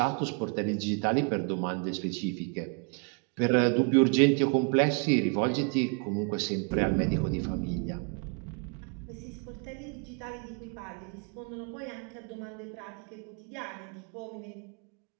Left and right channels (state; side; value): quieter; left; 37.1 dB